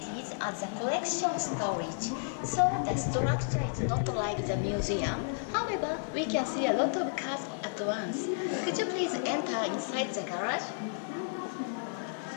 as a collection storage, so the structure is not like the museum. However, we can see a lot of cars at once. Could you please enter inside the garage?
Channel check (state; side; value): silent; right; digital silence